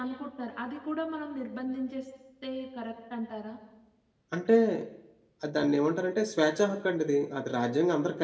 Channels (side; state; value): both; identical; correlation 1.00